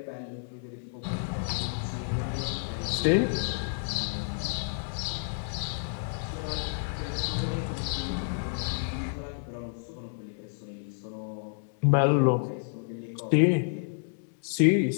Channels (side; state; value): right; silent; digital silence